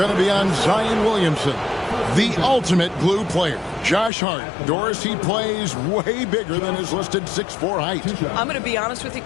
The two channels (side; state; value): right; drops out; at 4.1 s